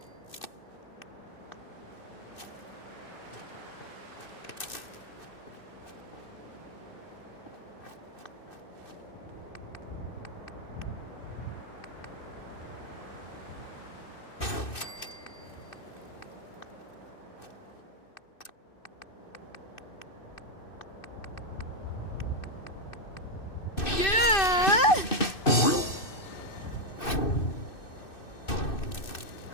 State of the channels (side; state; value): right; late; 2.6 ms